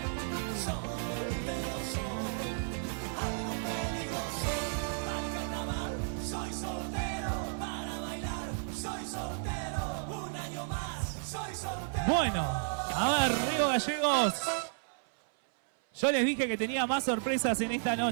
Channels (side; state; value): left; silent; 56 dB below the other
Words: Soltero soy, algo peligroso. Al carnaval soy soltero, para bailar soy soltero. Un año más soy soltero. Bueno, a ver, Río Gallegos. Yo les dije que tenía más sorpresas en esta